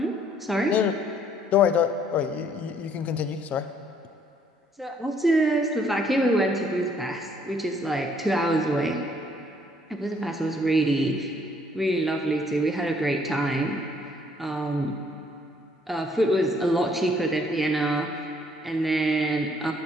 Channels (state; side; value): normal; both; correlation 0.64